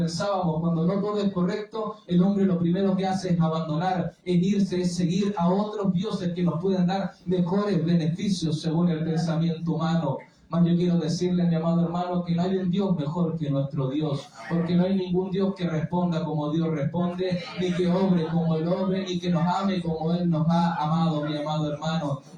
cuando no todo es correcto, el hombre lo primero que hace es abandonar, es irse, es seguir a otros dioses que nos pueden dar mejores beneficios según el pensamiento humano. Mas yo quiero decirle, mi amado hermano, que no hay un Dios mejor que nuestro Dios, porque no hay ningún Dios que responda como Dios responde, ni que obre como Él obre, ni que nos ame como Él nos ha amado, mi amado hermano.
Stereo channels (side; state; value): both; identical; correlation 1.00